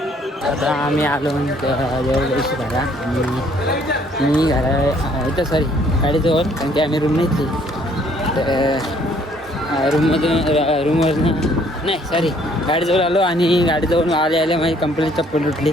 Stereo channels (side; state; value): both; normal; correlation 0.62